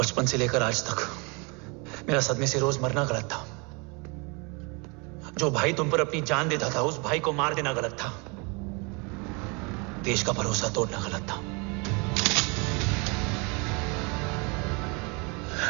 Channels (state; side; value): quieter; left; 30.6 dB